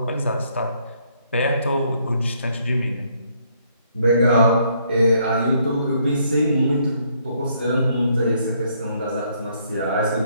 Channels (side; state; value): both; inverted; correlation -0.69